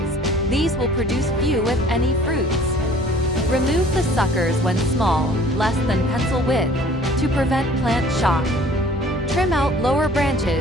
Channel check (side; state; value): both; normal; correlation 0.52